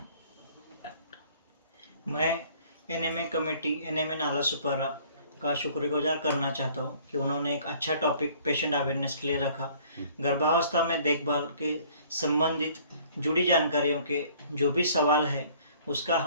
मैं एनएमए कमेटी एनएमए नालासोपारा का शुक्रगुजार करना चाहता हूँ कि उन्होंने एक अच्छा टॉपिक पेशेंट अवेयरनेस के लिए रखा। गर्भावस्था में देखभाल के संबंधित जुड़ी जानकारियों के जो भी सवाल है उसका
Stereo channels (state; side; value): inverted; both; correlation -0.56